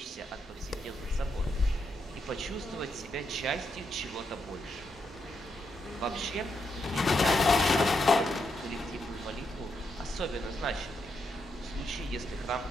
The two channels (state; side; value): normal; both; correlation 0.81